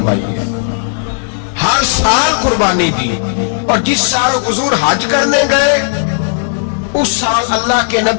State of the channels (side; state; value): right; silent; digital silence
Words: ہے، ہر سال قربانی دی. اور جس سال حضور حج کرنے گئے اس سال اللہ کے